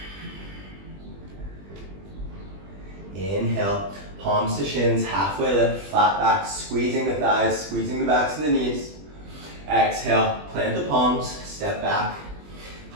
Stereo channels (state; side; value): late; left; 20 ms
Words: Inhale, palms to shins, halfway lift, flat back, squeezing the thighs, squeezing the backs of the knees. Exhale, plant the palms, step back,